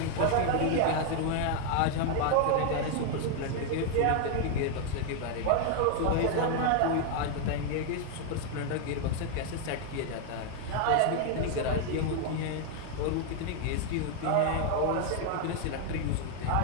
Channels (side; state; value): both; different; correlation 0.00